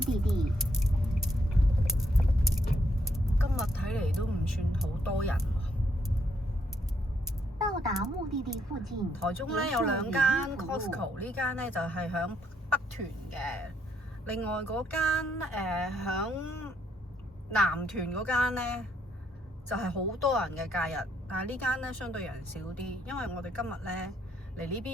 地。今日睇嚟都唔算好多人喎。到達目的地附近。台中咧有兩間 Costco， 呢間咧就係響北屯嘅，另外嗰間響南屯嗰間咧就係好多人嘅假日，但係呢間咧相對人少啲，因為我哋今日咧嚟呢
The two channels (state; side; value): normal; both; correlation 0.73